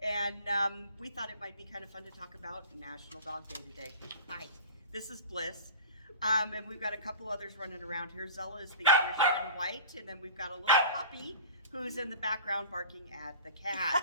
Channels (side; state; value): both; inverted; correlation -0.38